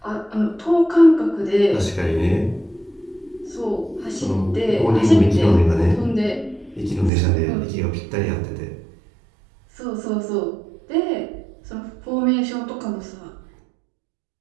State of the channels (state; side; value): drops out; left; at 7.1 s